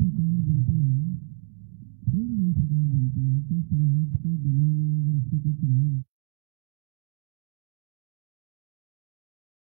बनती है, कोई भी नई सरकार बनती है, तो शुरुआत के दिनों में अगर उसने कोई चुनावी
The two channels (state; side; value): silent; left; digital silence